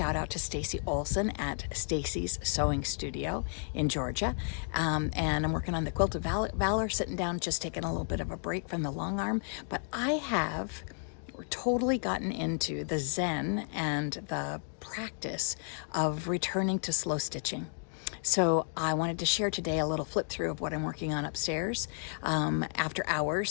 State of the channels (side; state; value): right; silent; 56 dB below the other